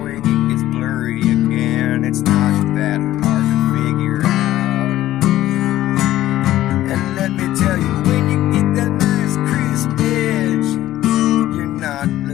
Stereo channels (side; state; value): right; quieter; 14.2 dB